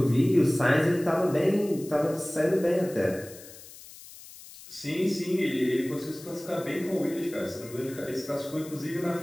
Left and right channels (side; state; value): left; noise; hiss, 18 dB below the sound